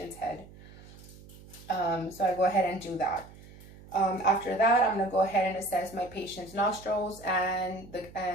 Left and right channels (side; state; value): right; noise; hum, 20 dB below the sound